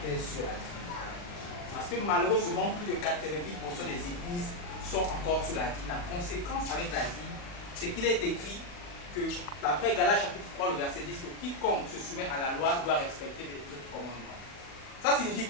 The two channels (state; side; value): late; right; 40 ms